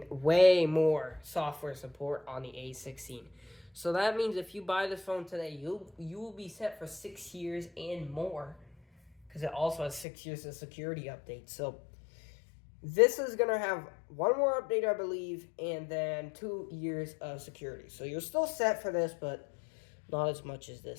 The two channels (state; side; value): drops out; right; at 10.1 s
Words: way more software support on the A16. So that means if you buy this phone today, you will be set for 6 years and more. Because it also has 6 years of security updates. So this is going to have 1 more update, I believe, and then 2 years of security. So you're still set for this, but not as much as